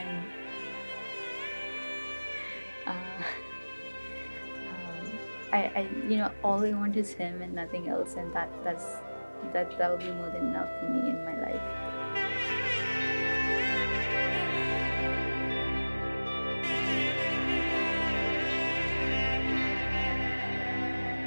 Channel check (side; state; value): both; inverted; correlation -1.00